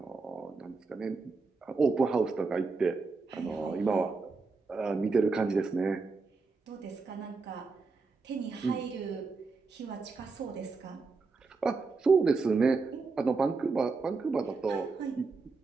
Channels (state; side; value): quieter; left; 4.2 dB